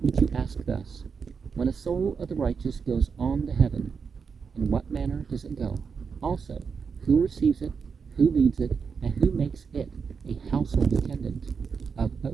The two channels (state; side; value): quieter; left; 5.8 dB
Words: which you ask thus: when a soul of the righteous goes on to heaven, in what manner does it go? Also, who receives it, who leads it, and who makes it a household attendant of